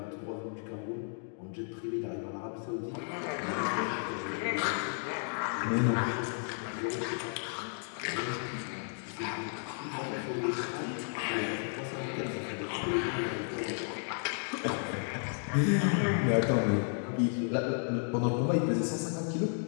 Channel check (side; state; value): right; silent; 56 dB below the other